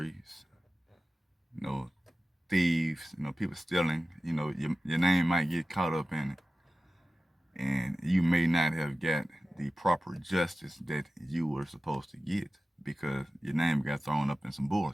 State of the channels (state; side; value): normal; both; correlation 0.95